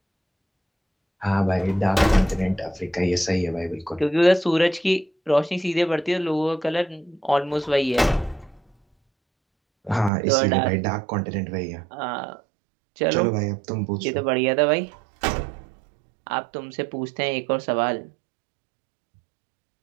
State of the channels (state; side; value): drops out; left; at 10.1 s